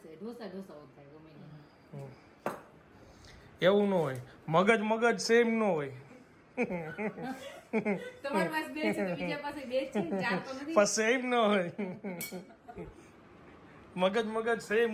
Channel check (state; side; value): identical; both; correlation 1.00